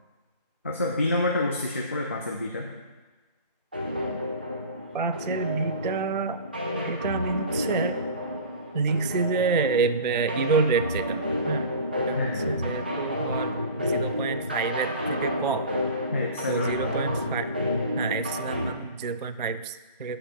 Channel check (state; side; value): inverted; both; correlation -0.39